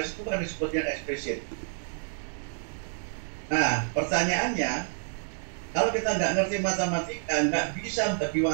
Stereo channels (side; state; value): left; silent; 59 dB below the other